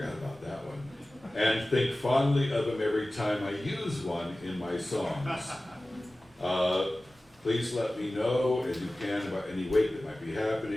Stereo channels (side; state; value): both; normal; correlation 0.97